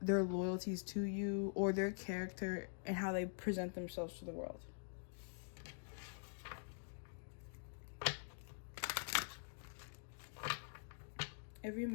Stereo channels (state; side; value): silent; right; digital silence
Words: their loyalties to you or their character and how they present themselves to the world. Every